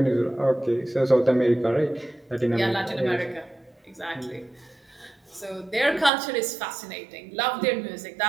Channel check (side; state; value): left; drops out; at 6.1 s